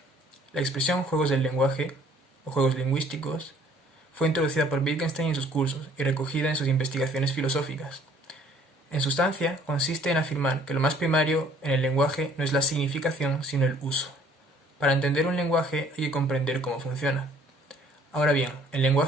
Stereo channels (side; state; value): both; normal; correlation 0.57